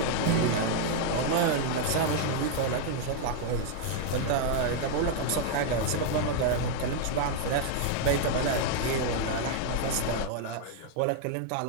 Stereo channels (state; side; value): different; both; correlation 0.00